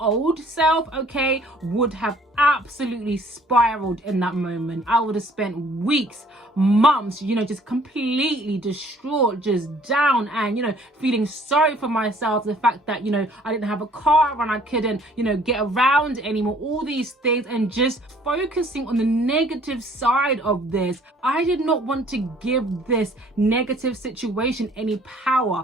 old self, okay, would have absolutely spiraled in that moment. I would have spent weeks, months, just completely distraught, just down, and feeling sorry for myself. The fact that I didn't have a car and I couldn't get around anymore, all these things, and just focusing on the negative side of this. I did not want to give this negative situation any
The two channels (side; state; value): both; normal; correlation 0.57